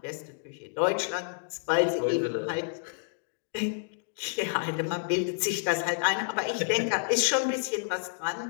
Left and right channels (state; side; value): silent; right; digital silence